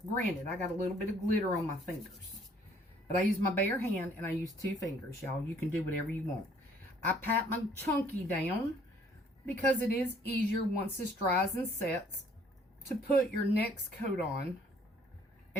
granted, I got a little bit of glitter on my fingers, but I use my bare hand and I use 2 fingers, y'all. You can do whatever you want. I pat my chunky down because it is easier once this dries and sets to put your next coat on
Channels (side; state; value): both; normal; correlation 0.61